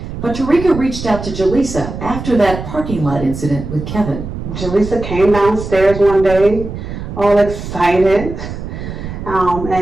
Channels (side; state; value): right; noise; rumble, 8 dB below the sound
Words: But Tarika reached out to Jaleesa after that parking lot incident with Kevin. Jaleesa came downstairs one day, all excited,